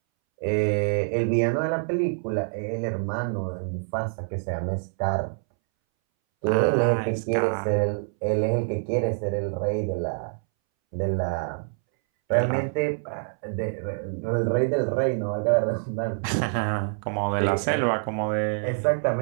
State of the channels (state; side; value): silent; left; 61 dB below the other